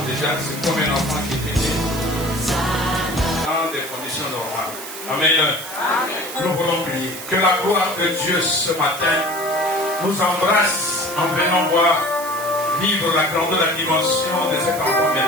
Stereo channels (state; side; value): noise; right; hiss, 11 dB below the sound